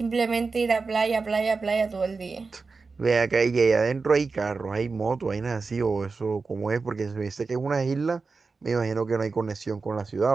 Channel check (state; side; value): quieter; left; 4.3 dB